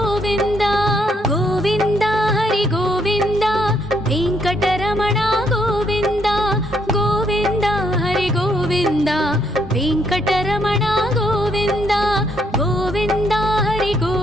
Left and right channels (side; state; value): both; normal; correlation 0.72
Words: గోవింద హరి గోవింద వెంకటరమణ గోవింద గోవింద హరి గోవింద వెంకటరమణ గోవింద గోవింద హరి